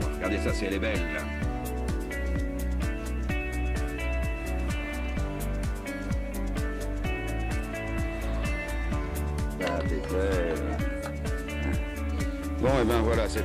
Regardez ça, si elle est belle, là. Ah, t'es belle. Bon, et ben voilà,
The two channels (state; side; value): identical; both; correlation 1.00